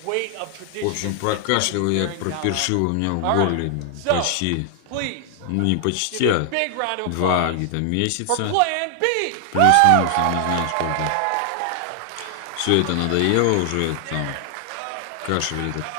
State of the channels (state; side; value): different; both; correlation 0.00